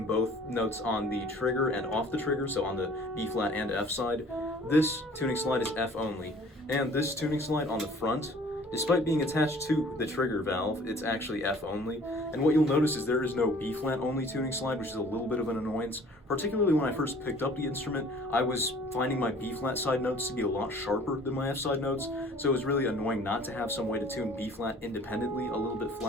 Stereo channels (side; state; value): both; normal; correlation 0.51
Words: both notes on the trigger and off the trigger, so on the B flat and F side. This tuning slide is F only, and this tuning slide on the front, despite being attached to the trigger valve, it's actually F only. And what you'll notice is there is no B flat only tuning slide, which is a little bit of an annoyance. Particularly when I first picked up the instrument, I was finding my B flat side notes to be a lot sharper than my F side notes, so it was really annoying not to have some way to tune B flat independently a little bit